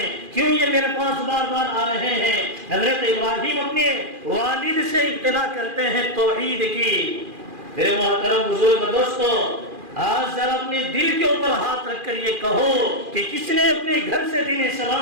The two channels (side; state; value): left; late; 2.4 ms